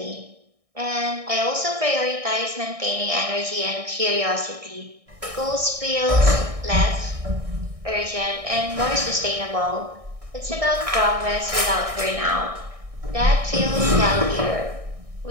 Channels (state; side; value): late; left; 1.6 ms